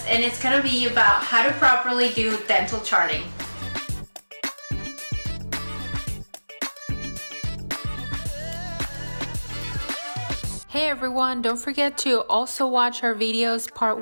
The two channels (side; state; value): both; inverted; correlation -1.00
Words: and it's going to be about how to properly do dental charting. Hey everyone, don't forget to also watch our videos part